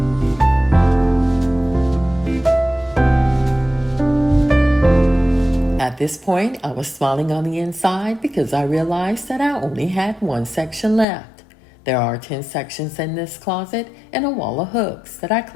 At this point, I was smiling on the inside because I realized that I only had one section left. There are 10 sections in this closet and a wall of hooks that I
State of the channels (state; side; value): drops out; right; at 11.1 s